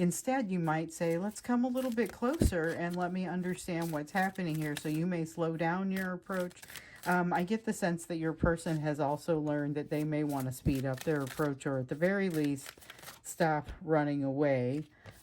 you might say, let's come a little bit closer and let me understand what's happening here. So you may slow down your approach. I get the sense that your person has also learned that they may want to speed up their approach, or at the very least, stop running away.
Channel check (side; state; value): both; identical; correlation 1.00